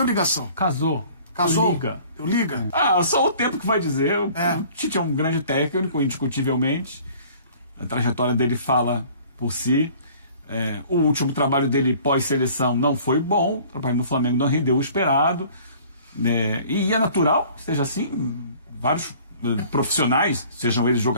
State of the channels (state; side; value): inverted; both; correlation -0.51